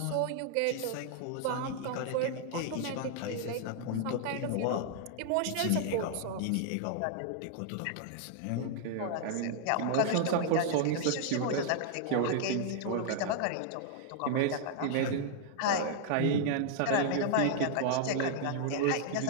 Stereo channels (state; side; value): different; both; correlation -0.01